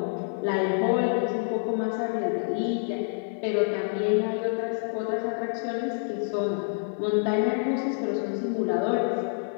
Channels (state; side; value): silent; right; digital silence